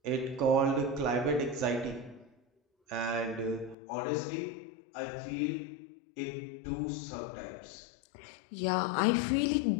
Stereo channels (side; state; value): right; drops out; at 3.8 s